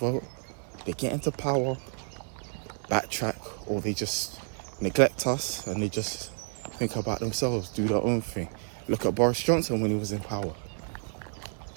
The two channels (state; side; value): silent; left; 58 dB below the other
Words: they get into power, backtrack, or they just neglect us and they just think about themselves, do their own thing. Look at Boris Johnson when he was in power.